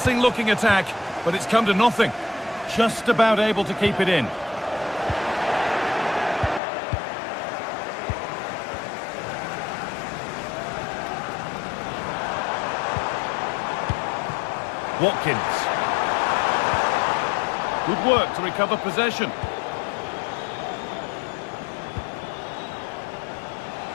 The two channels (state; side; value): drops out; right; at 6.6 s